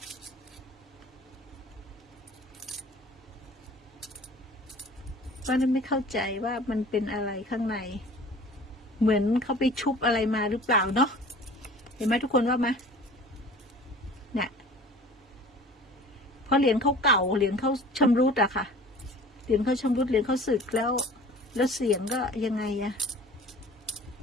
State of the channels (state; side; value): normal; both; correlation 0.45